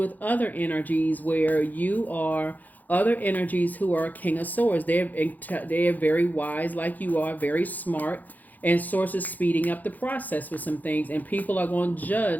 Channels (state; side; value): late; right; 0.082 ms